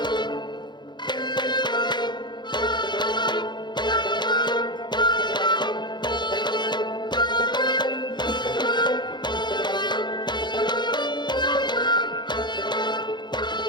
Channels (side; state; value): right; late; 0.21 ms